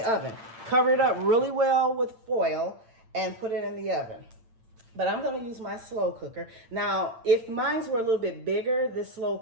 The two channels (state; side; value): late; left; 8.8 ms